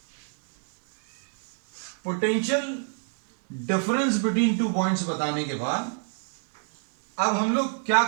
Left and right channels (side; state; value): left; silent; 59 dB below the other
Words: potential difference between two points बताने के बाद अब हम लोग क्या